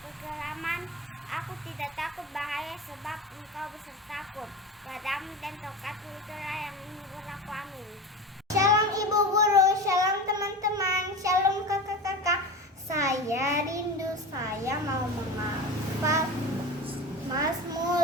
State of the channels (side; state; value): both; normal; correlation 0.29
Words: kekelaman, aku tidak takut bahaya, sebab engkau besertaku. Gadamu dan tongkatmu itulah yang menghibur aku. Amin. Shalom Ibu Guru, shalom teman-teman, shalom kakak-kakak. Saya rindu, saya mau menghafal